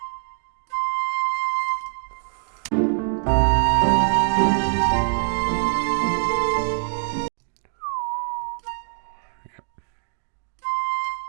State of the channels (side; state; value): left; silent; 63 dB below the other